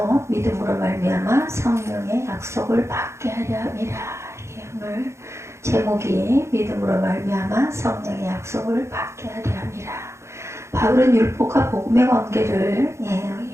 믿음으로 말미암아 성령의 약속을 받게 하려 함이라. 오늘 제목이 믿음으로 말미암아 성령의 약속을 받게 하려 함이라. 바울은 율법과 복음의 관계를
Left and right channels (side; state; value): left; late; 0.13 ms